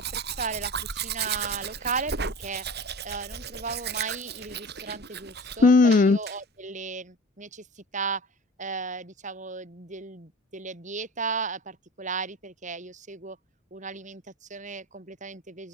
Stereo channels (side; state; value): both; normal; correlation 0.37